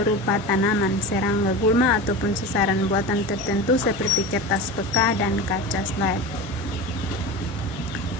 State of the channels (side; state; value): both; normal; correlation 0.28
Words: tanaman, serangga, gulma, ataupun sasaran buatan tertentu seperti kertas peka dan kaca slide.